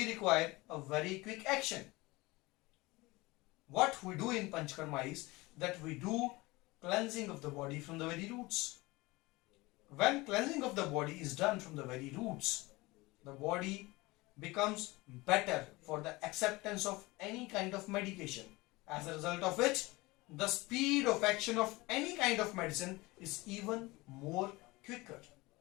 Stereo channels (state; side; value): quieter; right; 22.0 dB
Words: require a very quick action. What we do in Panchakarma is that we do cleansing of the body from the very roots. when cleansing of the body is done from the very roots, the body becomes better for the acceptance of any kind of medication, as a result of which the speed of action of any kind of medicine is even more quicker.